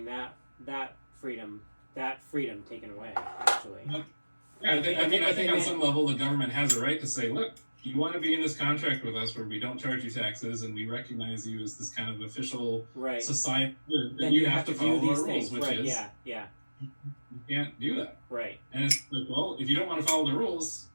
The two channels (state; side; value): inverted; both; correlation -1.00